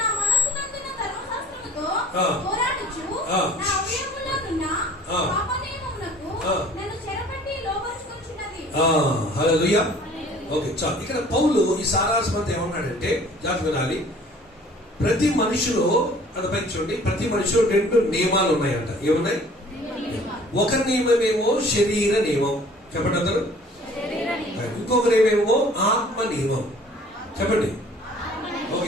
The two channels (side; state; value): both; normal; correlation 0.52